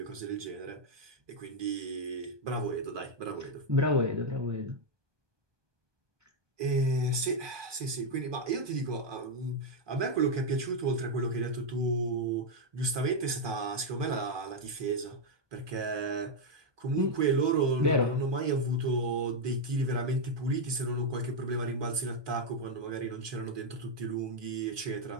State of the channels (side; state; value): left; late; 1.2 ms